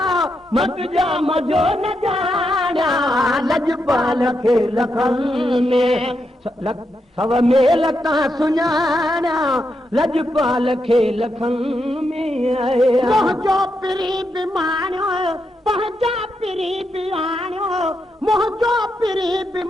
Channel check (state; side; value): normal; both; correlation 0.83